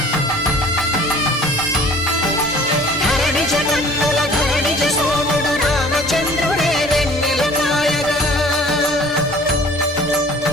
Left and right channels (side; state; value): both; normal; correlation 0.50